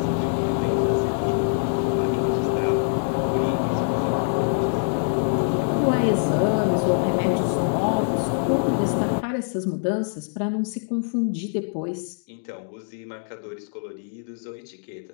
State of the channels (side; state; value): right; silent; digital silence